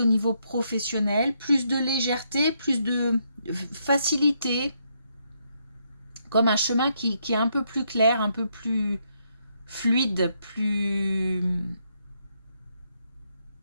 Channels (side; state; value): both; inverted; correlation -0.76